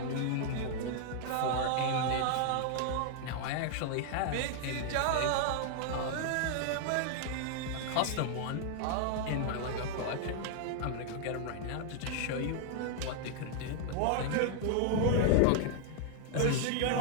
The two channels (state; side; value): different; both; correlation 0.00